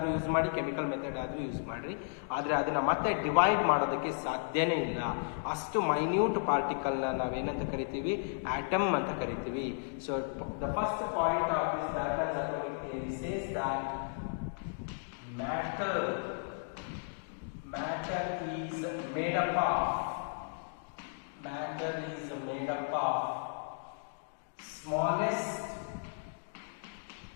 use ಮಾಡಿ, chemical method ಆದ್ರೂ use ಮಾಡ್ರಿ, ಆದ್ರೆ ಅದನ್ನ ಮತ್ತೆ divide ಮಾಡೋದಕ್ಕೆ ಸಾಧ್ಯನೇ ಇಲ್ಲ. ಅಷ್ಟು ಮೈನ್ಯೂಟ್ ಪಾರ್ಟಿಕಲ್ ನ ನಾವೇನಂತ ಕರಿತೀವಿ? ಆಟಮ್ ಅಂತ ಕರಿತೀವಿ. So the first point of this ಡಾಲ್ಟನ್ಸ್ atomic theory says that matter is made up of smallest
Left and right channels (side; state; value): right; silent; digital silence